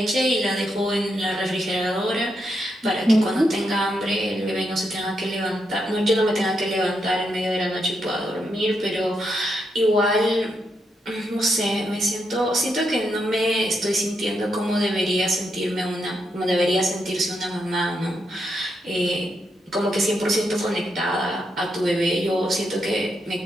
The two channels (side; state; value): both; normal; correlation 0.82